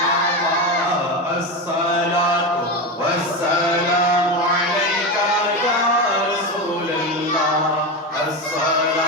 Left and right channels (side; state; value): both; normal; correlation 0.18